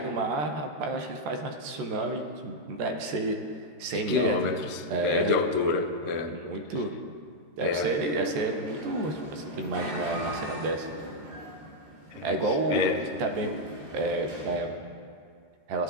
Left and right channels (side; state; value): left; late; 14 ms